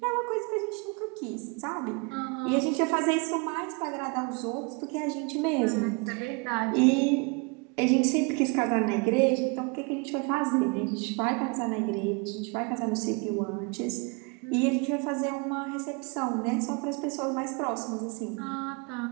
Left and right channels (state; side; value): quieter; left; 31.8 dB